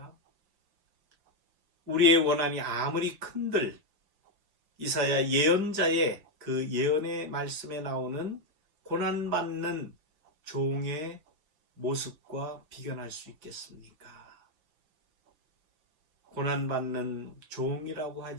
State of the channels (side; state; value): left; late; 6.5 ms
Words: 우리의 원한이 아무리 큰들 이사야 예언자의 그 예언의 말씀에 나오는 고난받는 종의 모습과 비견할 수 있겠습니까? 고난받는 종이라고